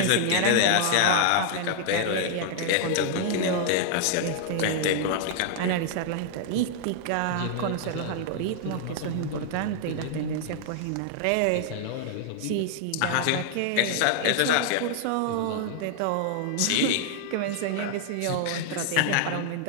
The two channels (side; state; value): both; different; correlation 0.00